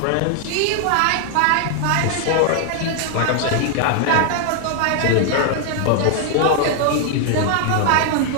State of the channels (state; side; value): different; both; correlation 0.00